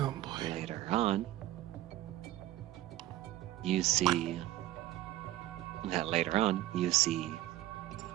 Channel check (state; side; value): quieter; left; 15.0 dB